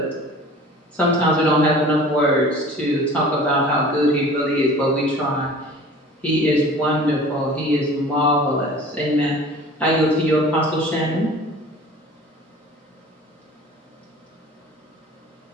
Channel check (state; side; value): normal; both; correlation 0.44